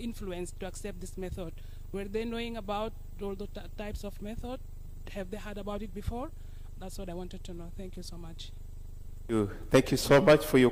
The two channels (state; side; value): identical; both; correlation 1.00